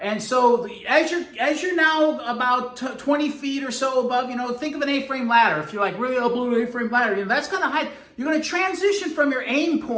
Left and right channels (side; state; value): both; identical; correlation 1.00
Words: And so as you're now about 20 feet or so above, think of an A-frame ladder. If you're like really up below an A-frame ladder, that's kind of high. You're going to transition from your aim